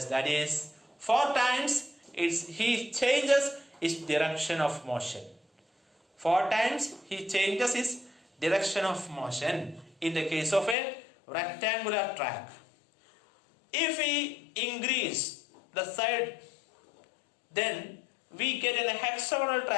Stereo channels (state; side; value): drops out; right; at 10.8 s